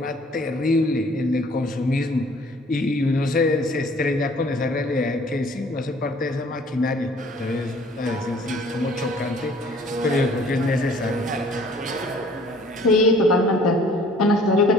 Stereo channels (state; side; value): normal; both; correlation 0.54